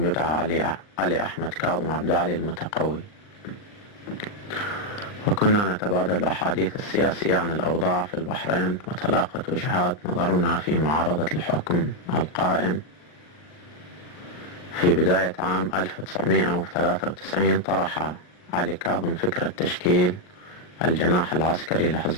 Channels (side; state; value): right; late; 39 ms